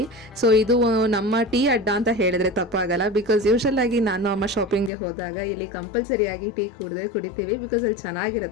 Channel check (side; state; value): right; drops out; at 4.9 s